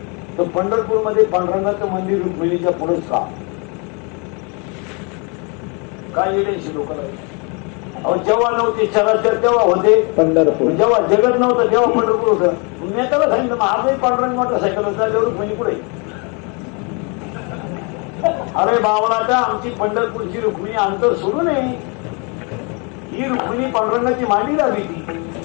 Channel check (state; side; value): quieter; right; 33.4 dB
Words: तर पंढरपूर मध्ये पांडुरंगाचं मंदिर रुक्मिणीच्या पुढेच का काय येण्याची लोक अहो जेव्हा नव्हते चराचर तेव्हा होते पंढरपूर. जेव्हा जगत नव्हतं तेव्हा पंढरपूर होतं. मी त्याला सांगितलं मग आजही पांडुरंग मोटरसायकल होता तेवढं रुक्मिणी पुढे. अरे बावळाटा आमची पंढरपूरची रुक्मिणी अंतर सोडू नये. ही रुक्मिणी पांडुरंगाची मांडी लावी ती